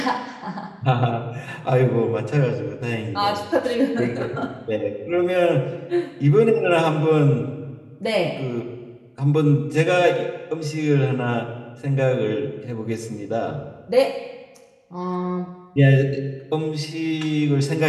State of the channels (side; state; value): both; identical; correlation 1.00